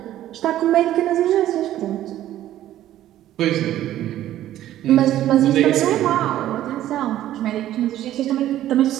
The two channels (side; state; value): left; quieter; 13.0 dB